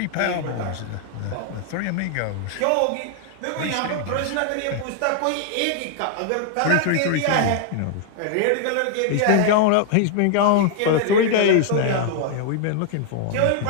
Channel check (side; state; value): both; different; correlation 0.00